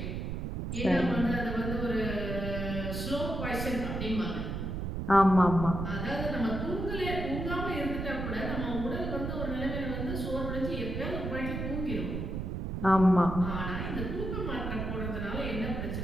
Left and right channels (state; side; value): noise; right; rumble, 4 dB below the sound